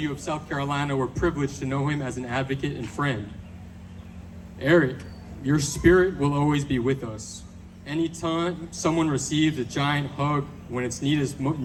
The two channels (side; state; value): both; identical; correlation 1.00